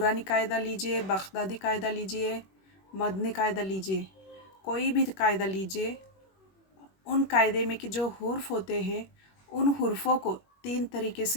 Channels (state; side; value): late; right; 21 ms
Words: कायदा लीजिए, बगदादी कायदा लीजिए, मदनी कायदा लीजिए, कोई भी कायदा लीजिए, उन कायदे में कि जो हुर्फ होते हैं उन हुर्फों को 3 तरीके